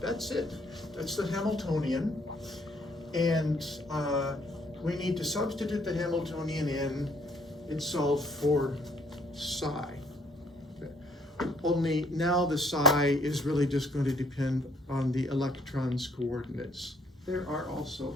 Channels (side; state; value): both; normal; correlation 0.65